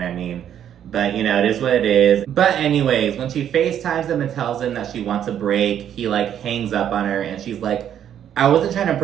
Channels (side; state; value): left; quieter; 9.8 dB